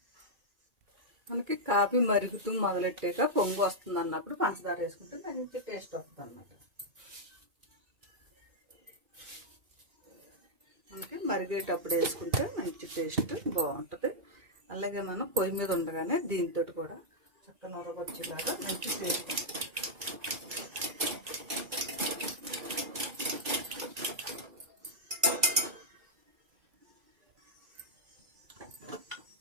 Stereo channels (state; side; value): late; left; 2.3 ms